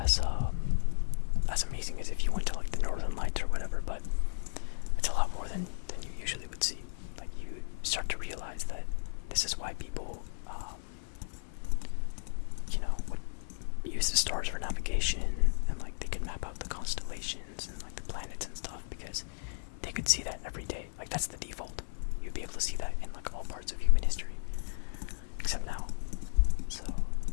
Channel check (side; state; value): right; silent; 55 dB below the other